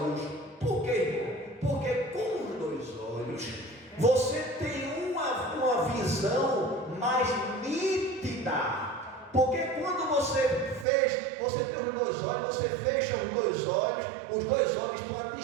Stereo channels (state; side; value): drops out; left; at 10.9 s